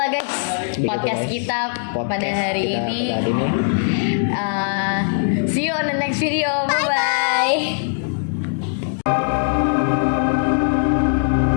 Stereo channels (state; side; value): silent; right; digital silence